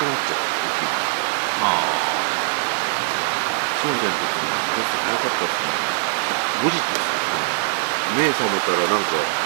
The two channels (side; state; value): left; silent; digital silence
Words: なっちゃう。まあ、そうじゃなくて、なかったっすね。5時目覚めたらなんか、